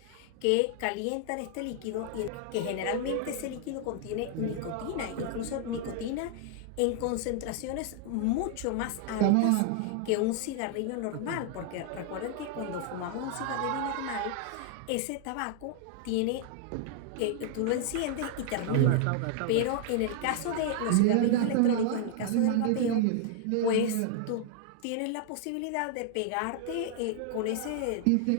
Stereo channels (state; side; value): different; both; correlation 0.00